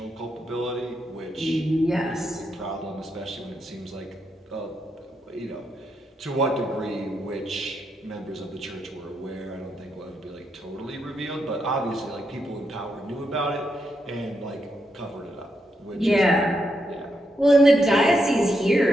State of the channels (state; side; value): normal; both; correlation 0.82